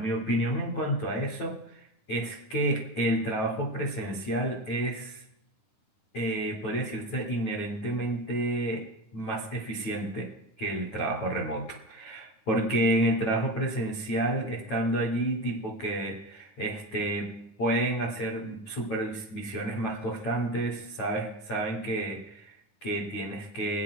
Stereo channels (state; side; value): late; right; 9.2 ms